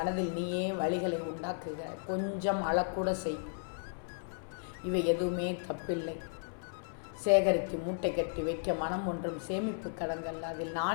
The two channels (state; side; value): silent; right; 55 dB below the other